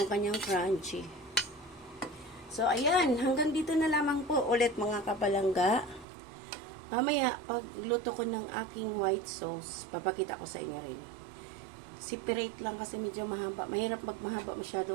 kanyang crunchy. So, ayan, hanggang dito na lamang po ulit mga kapalangga. Mamaya, pag luto ko ng aking white sauce, papakita ko sa inyo rin. Separate lang kasi medyo mahaba. Mahirap magmahaba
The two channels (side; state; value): left; drops out; at 6.1 s